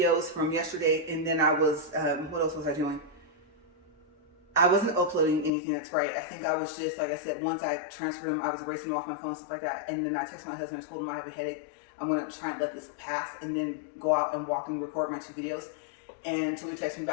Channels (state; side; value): drops out; right; at 5.5 s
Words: from yesterday, and then I was, what else was I doing? I wasn't uploading anything, that's right. I think I was just, like I said, once I transferred them, I was erasing them off my phone, stuff like that. And then I texted my husband and told him I have a headache. I'm gonna try and let this pass and then go out and walk and record my 2 videos. And until he texted me